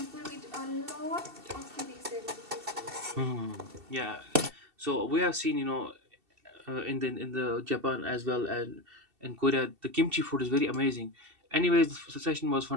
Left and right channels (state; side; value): late; left; 2.7 ms